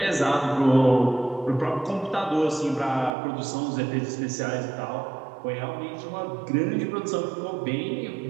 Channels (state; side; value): drops out; left; at 3.2 s